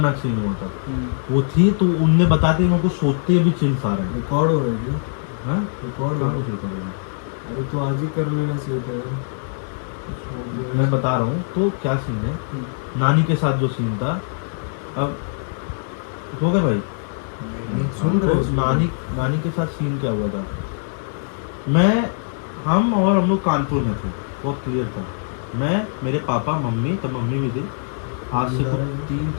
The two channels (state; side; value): silent; right; 64 dB below the other